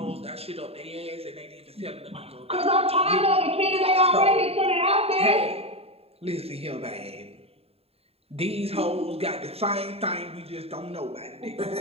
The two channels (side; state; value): left; late; 0.29 ms